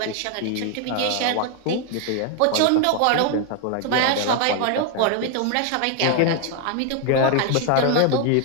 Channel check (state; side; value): different; both; correlation 0.01